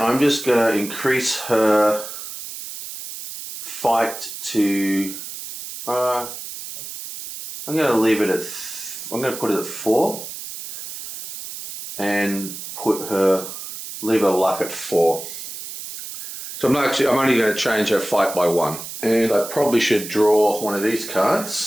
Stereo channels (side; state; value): right; noise; hiss, 10 dB below the sound